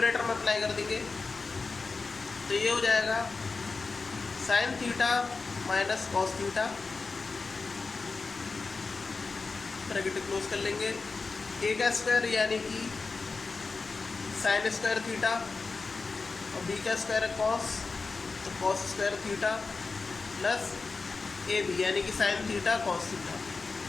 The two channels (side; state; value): right; quieter; 4.2 dB